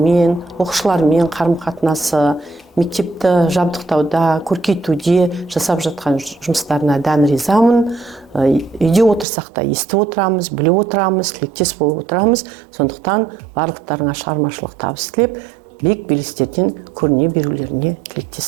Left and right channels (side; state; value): left; drops out; at 9.2 s